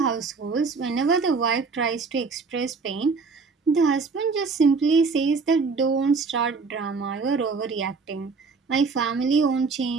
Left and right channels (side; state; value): left; quieter; 4.6 dB